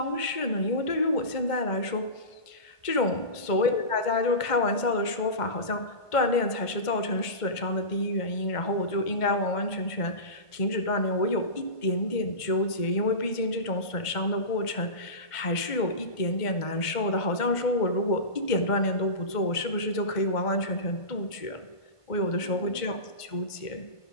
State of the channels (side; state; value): right; late; 1.5 ms